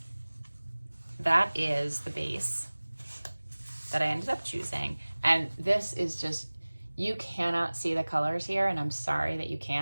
that is the base that I ended up choosing. And this is just, you cannot see the colors here, and I'm sorry that you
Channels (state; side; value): inverted; both; correlation -1.00